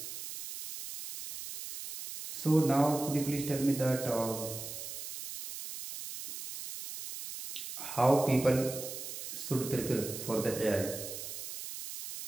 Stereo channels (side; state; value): right; noise; hiss, 9 dB below the sound